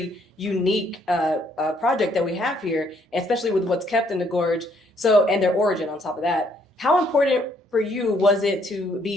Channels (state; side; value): normal; both; correlation 0.68